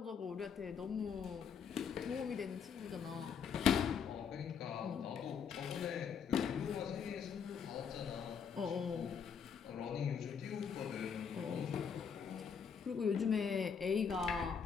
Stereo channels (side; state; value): right; quieter; 6.8 dB